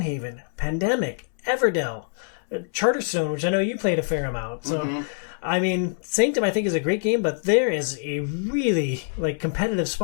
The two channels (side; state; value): right; silent; 62 dB below the other